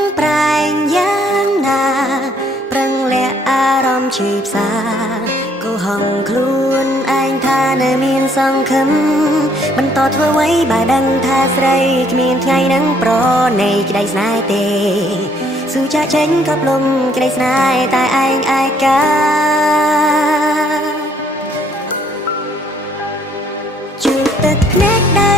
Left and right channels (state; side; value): normal; both; correlation 0.65